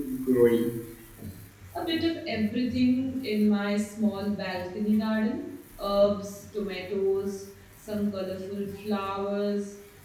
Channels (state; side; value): identical; both; correlation 1.00